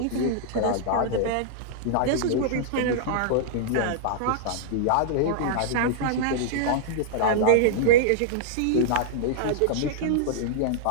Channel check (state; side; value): different; both; correlation -0.02